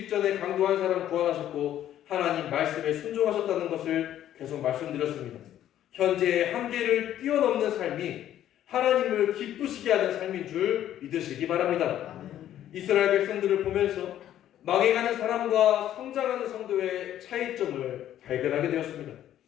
강도 한 사람 구원하셨고 하나님 말씀에 순종하셨다는 것을 계속 말씀드렸습니다. 현재의 한계를 뛰어넘는 삶이 하나님을 기쁘시게 하는 삶인 줄 믿으시기 바랍니다. 이스라엘 백성들을 보면서 망해가는 사람과 성장하는 성도의 차이점을 발견하게 되었습니다.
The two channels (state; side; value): quieter; right; 11.7 dB